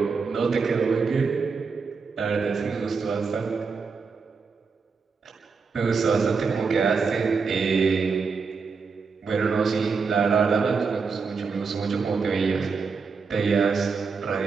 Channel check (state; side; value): quieter; left; 5.1 dB